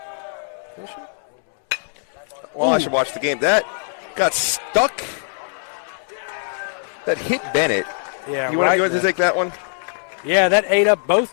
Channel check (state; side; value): silent; right; 65 dB below the other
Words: Is she? Well, I should watch the game. That got stuck. That hit Bennett. Yeah. You want to take that one? Yeah, that ate up